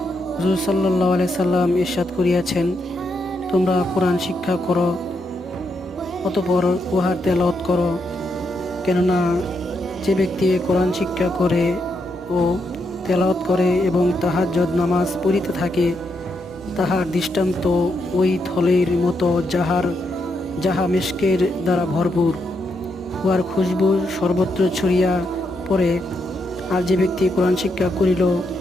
হুজুর সাল্লাল্লাহু আলাইহি সাল্লাম ইরশাদ করিয়াছেন, তোমরা কোরআন শিক্ষা করো, অতঃপর উহার তেলাওয়াত করো। কেননা যে ব্যক্তি কোরআন শিক্ষা করে ও তেলাওয়াত করে এবং তাহাজ্জুদ নামাজ পড়িতে থাকে, তাহার দৃষ্টান্ত ওই থলের মতো যাহা মিশকের দ্বারা ভরপুর, উহার খুশবু সর্বত্র ছড়িয়া পড়ে। আর যে ব্যক্তি কোরআন শিক্ষা করিল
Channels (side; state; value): both; normal; correlation 0.81